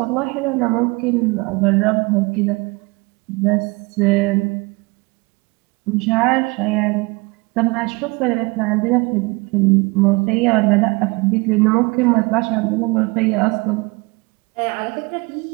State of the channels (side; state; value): left; quieter; 26.4 dB